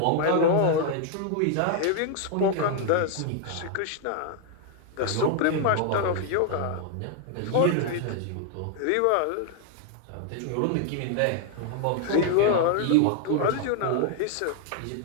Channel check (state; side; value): different; both; correlation 0.00